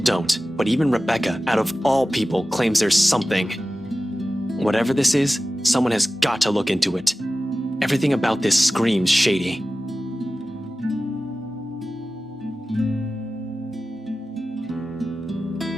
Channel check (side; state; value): both; normal; correlation 0.95